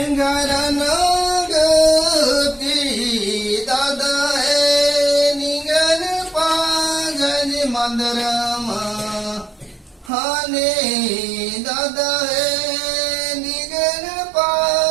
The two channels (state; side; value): drops out; left; at 10.1 s